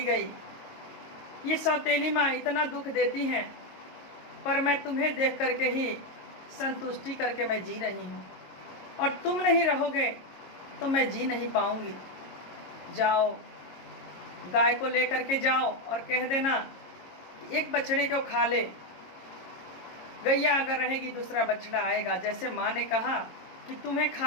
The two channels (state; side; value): late; right; 22 ms